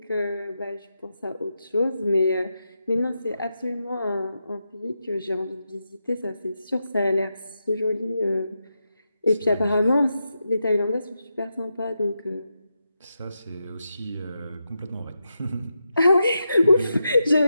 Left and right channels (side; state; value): both; inverted; correlation -0.87